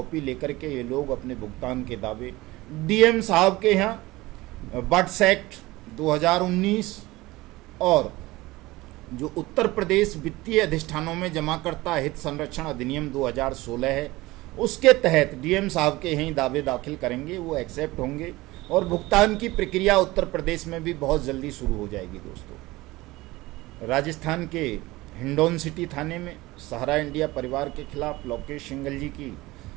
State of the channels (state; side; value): quieter; left; 19.8 dB